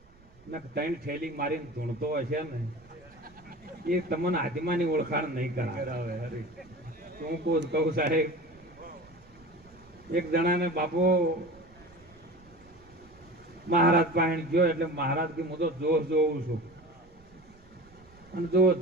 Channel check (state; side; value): noise; right; rumble, 26 dB below the sound